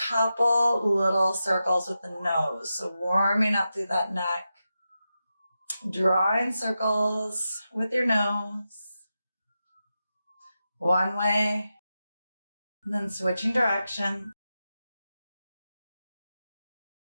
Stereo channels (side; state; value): both; inverted; correlation -0.90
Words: little circles with the nose. So warming up through that neck. Drawing circles with your nose. One way. And then switching direction.